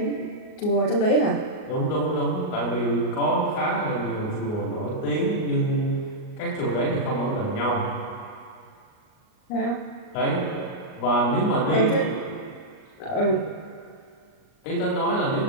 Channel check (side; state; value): right; late; 38 ms